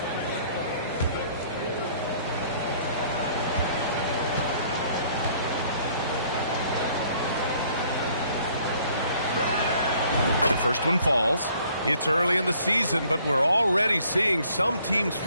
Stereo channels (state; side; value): inverted; both; correlation -0.60